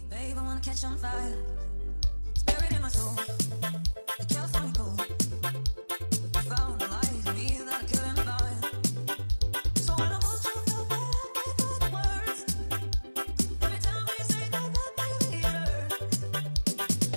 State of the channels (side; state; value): both; inverted; correlation -1.00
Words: Babe, I wanna catch on fire. It's buried in my soul. The California gold. I found a light in me that I couldn't find. So when I hold you feel back, I thought the words. Every time we say goodbye, baby, it hurts.